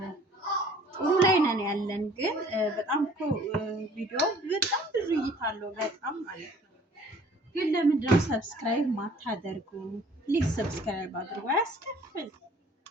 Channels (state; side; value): normal; both; correlation 0.53